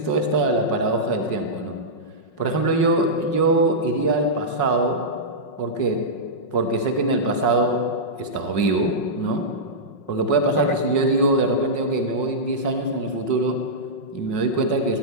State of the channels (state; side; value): late; right; 5.5 ms